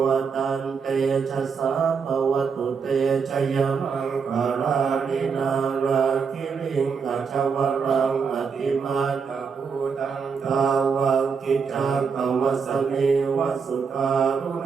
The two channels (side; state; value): left; quieter; 5.8 dB